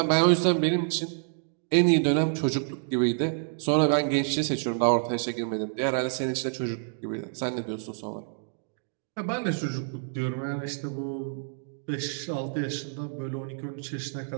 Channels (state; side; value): silent; left; digital silence